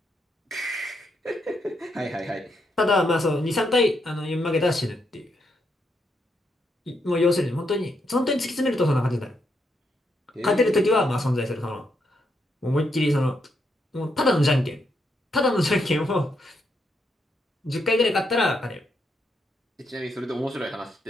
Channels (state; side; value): normal; both; correlation 0.79